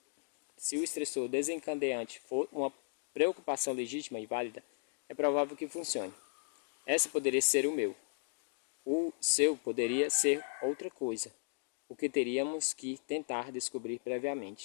desencadeante for uma preocupação legítima e válida, é provável que funcione. Essa poderia ser o meu. O seu poderia ser outra coisa, o que teríamos que tentar descobrir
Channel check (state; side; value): silent; right; digital silence